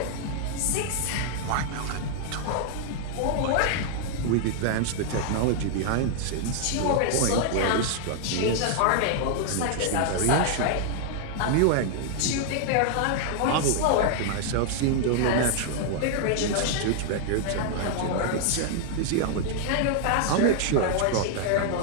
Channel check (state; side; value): different; both; correlation 0.00